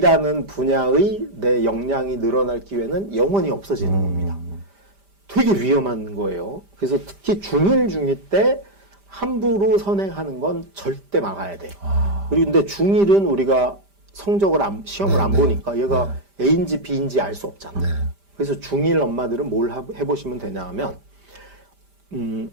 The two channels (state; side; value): late; left; 5.0 ms